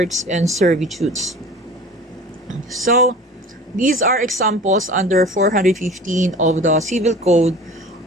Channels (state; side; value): normal; both; correlation 0.41